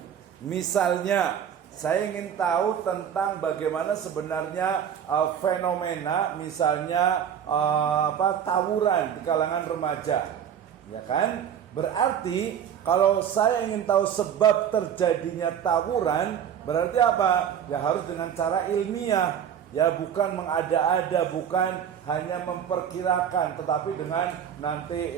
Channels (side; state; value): left; quieter; 8.8 dB